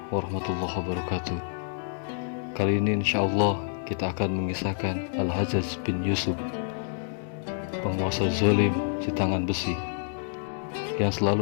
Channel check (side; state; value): right; silent; 59 dB below the other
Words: warahmatullahi wabarakatuh. Kali ini insyaallah kita akan mengisahkan Al-Hajjaj bin Yusuf, penguasa zalim si tangan besi yang